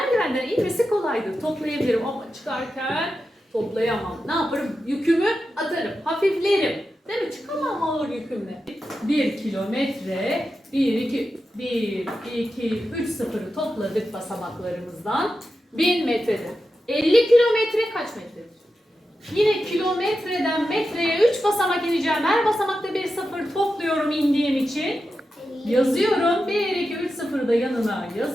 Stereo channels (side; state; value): both; normal; correlation 0.90